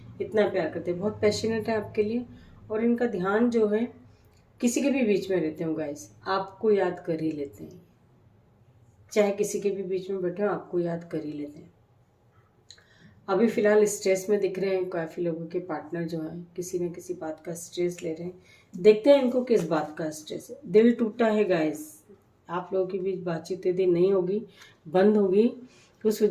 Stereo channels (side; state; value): both; identical; correlation 1.00